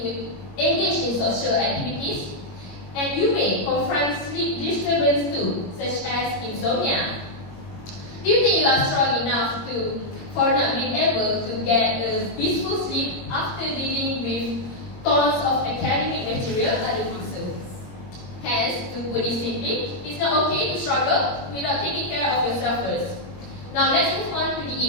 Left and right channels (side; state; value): right; late; 21 ms